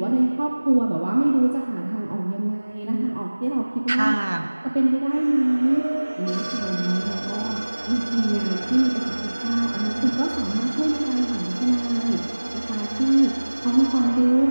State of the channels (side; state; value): both; inverted; correlation -1.00